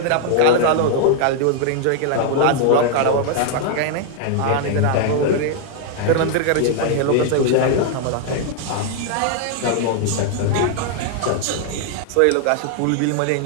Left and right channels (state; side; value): different; both; correlation 0.00